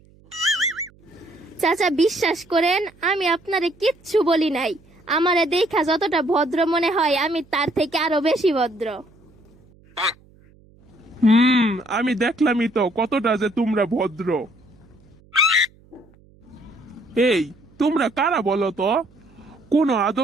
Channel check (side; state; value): right; noise; hum, 28 dB below the sound